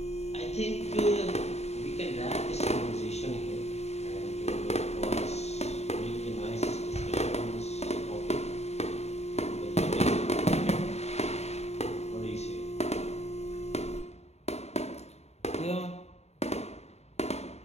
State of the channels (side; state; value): right; late; 0.31 ms